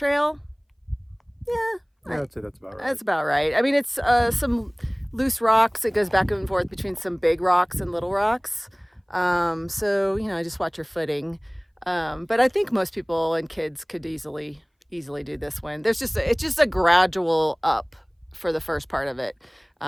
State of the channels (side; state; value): both; identical; correlation 1.00